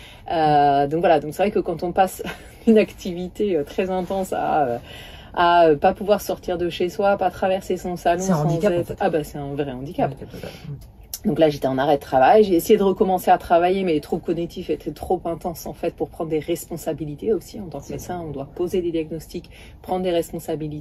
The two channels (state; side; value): identical; both; correlation 1.00